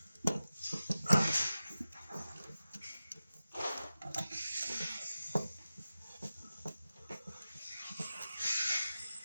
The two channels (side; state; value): both; inverted; correlation -0.94